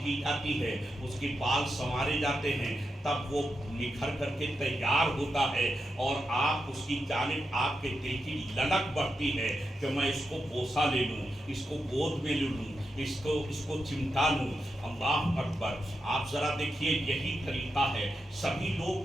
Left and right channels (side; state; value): both; normal; correlation 0.87